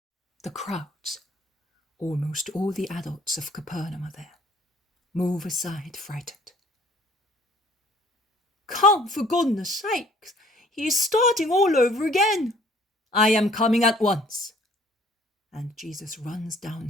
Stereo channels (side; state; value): both; normal; correlation 0.57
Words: The crowds, almost all the adults of Capernaum are there, move aside frightened. Come, for goodness sake, he is starting all over again. I am coming at once. And Jesus runs